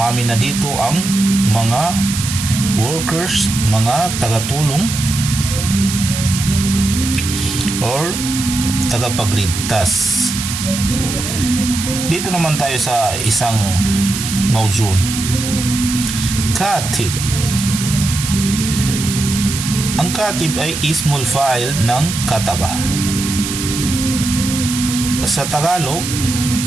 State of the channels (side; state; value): right; noise; hiss, 5 dB below the sound